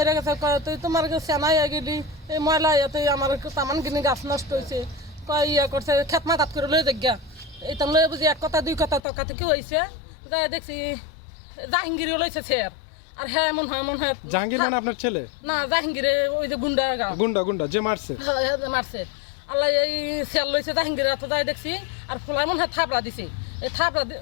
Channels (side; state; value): right; drops out; at 9.0 s